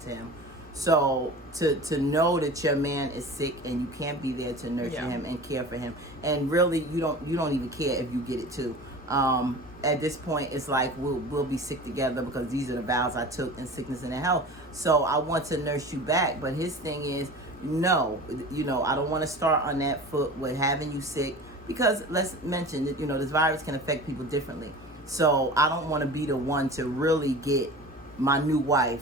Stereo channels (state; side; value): normal; both; correlation 0.36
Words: him. So to know that your man is sick and you can't be there to nurture him and care for him, and really you don't even care if you get it too. At this point, it's like we'll be sick together because these are the vows I took in sickness and in health. So I want to nurse you back, but his thing is no, I don't want to start on that foot with having you sick. Because let's mention that, this virus can affect people differently. So I don't want to be the one to really get my new